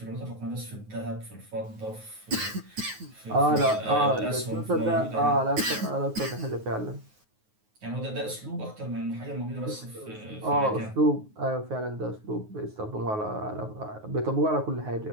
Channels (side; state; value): left; late; 9.4 ms